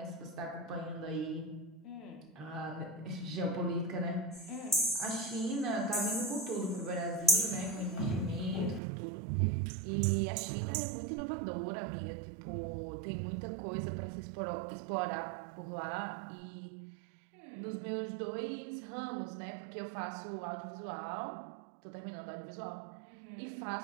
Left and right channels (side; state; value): left; drops out; at 8.8 s